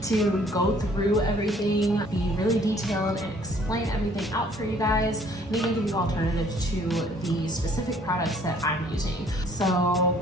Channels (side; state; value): both; normal; correlation 0.59